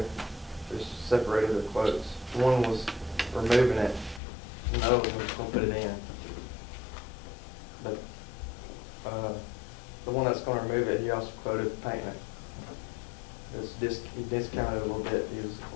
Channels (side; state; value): right; drops out; at 4.2 s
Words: just separated their quotes. One was removing it, and the other one was gonna put it in. But the one that's gonna remove it, he also quoted painting it. He discounted a little bit. He was